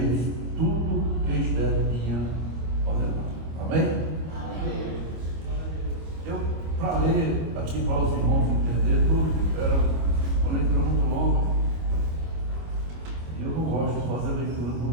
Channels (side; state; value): left; late; 25 ms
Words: tudo que Esther tinha ordenado. Amém? Amém. Eu, para ler aqui para os irmãos entender tudo, era uma leitura muito longa, e eu não gosto de fazer leitura